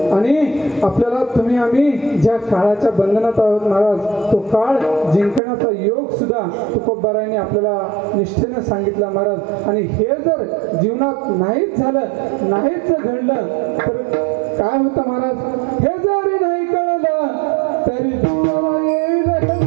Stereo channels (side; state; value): left; drops out; at 5.4 s